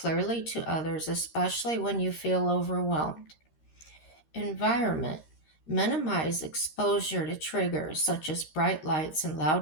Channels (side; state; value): right; late; 13 ms